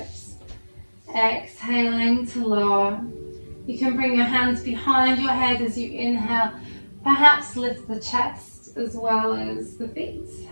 Exhaling to lower. You can bring your hands behind your head as you inhale. Perhaps lift the chest as well as the feet.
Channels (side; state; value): both; inverted; correlation -1.00